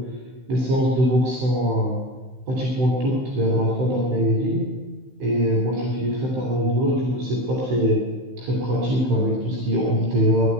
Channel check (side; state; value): left; late; 16 ms